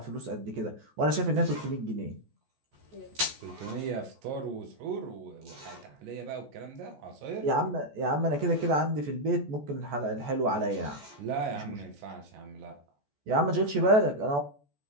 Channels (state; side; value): late; left; 14 ms